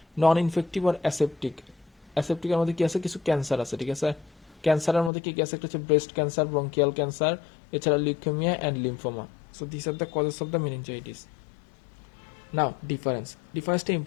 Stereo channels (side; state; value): right; drops out; at 5.1 s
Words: নন ইনফেক্টিভ আর অ্যাসেপ্টিকের মধ্যে কি আছে? কিছু ক্যান্সার আছে, ঠিক আছে? ক্যান্সারের মধ্যে কি কি আছে? একটা হচ্ছে ব্রেস্ট ক্যান্সার, ব্রঙ্কিয়াল ক্যান্সার, এছাড়া leukaemia and lymphoma. So this are the causes of the meningitis. Now ডিফারেন্সটা